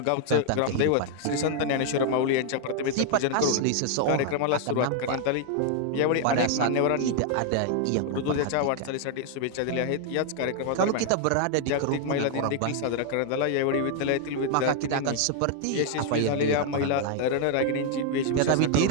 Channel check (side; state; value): both; different; correlation 0.00